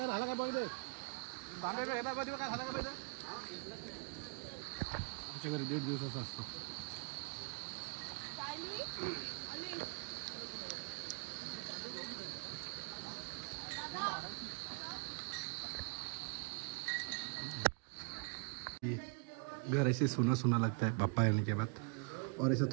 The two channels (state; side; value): quieter; left; 36.1 dB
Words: आमच्या घरी 1.5 दिवसाचा असतो. घर ऐसे सुना सुना लगता है पापा आने के बाद. और ऐसा